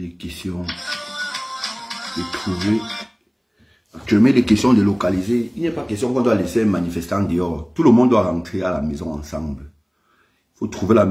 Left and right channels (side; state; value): both; identical; correlation 1.00